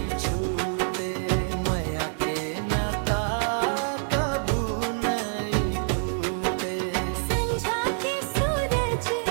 छूटे, मया के नाता कबू नहीं टूटे। संझा के सूरज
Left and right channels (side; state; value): left; silent; digital silence